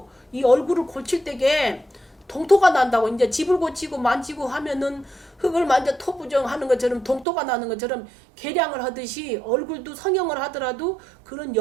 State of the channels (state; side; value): drops out; left; at 7.2 s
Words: 이 얼굴을 고칠 때게 동토가 난다고. 이제 집을 고치고 만지고 하면은 흙을 만져 토부정하는 것처럼 동토가 나는 것처럼 계량을 하듯이 얼굴도 성형을 하더라도 그런